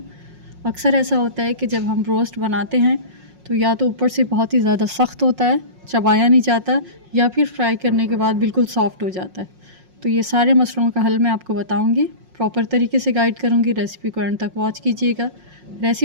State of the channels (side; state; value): left; late; 5.5 ms